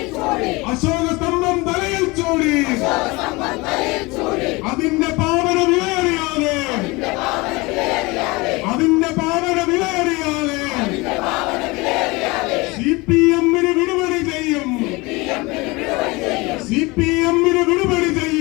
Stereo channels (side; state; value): right; quieter; 24.2 dB